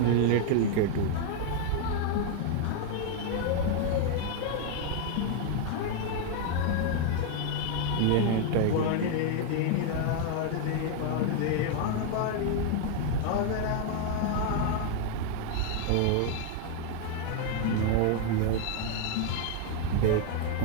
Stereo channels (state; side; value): different; both; correlation 0.00